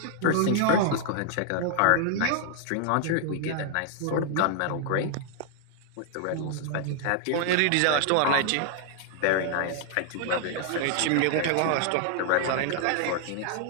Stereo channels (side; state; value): both; different; correlation -0.01